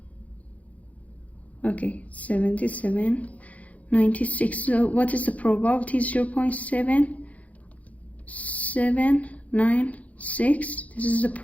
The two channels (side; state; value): right; late; 0.068 ms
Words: Okay, 77.96. So what is the probability? 0.7796. This is the